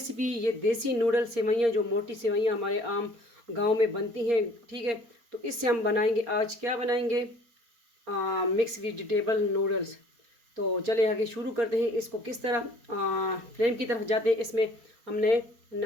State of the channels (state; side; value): late; left; 4.3 ms